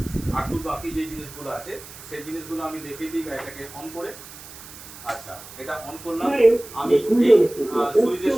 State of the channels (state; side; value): noise; right; hiss, 16 dB below the sound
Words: আর বাকি যে জিনিসগুলো আছে সেই জিনিসগুলো আমি দেখিয়ে দিই গাড়িটাকে অন করে। আচ্ছা, এটা অন করলাম। আমি এই সুইচের